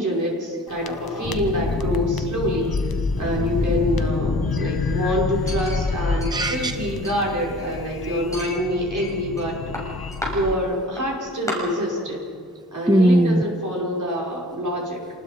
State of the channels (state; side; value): normal; both; correlation 0.48